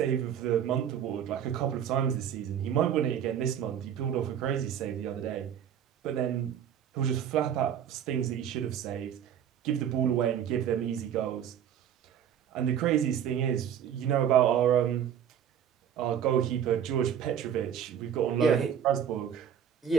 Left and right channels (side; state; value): left; quieter; 9.2 dB